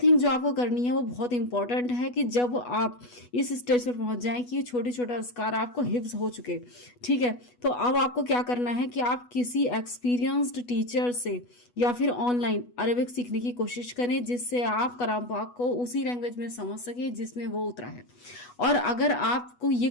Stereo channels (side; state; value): right; late; 8.2 ms